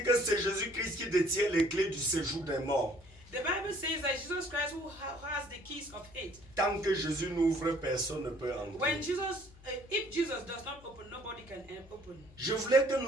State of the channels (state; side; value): noise; left; hum, 23 dB below the sound